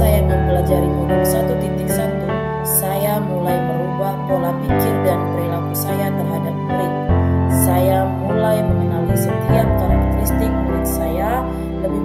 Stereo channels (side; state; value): both; identical; correlation 1.00